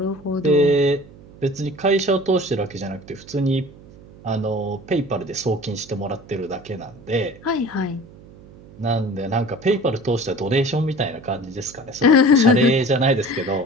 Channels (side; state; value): right; noise; hum, 21 dB below the sound